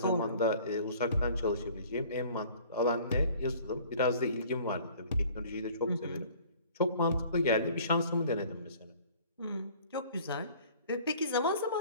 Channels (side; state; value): both; inverted; correlation -0.51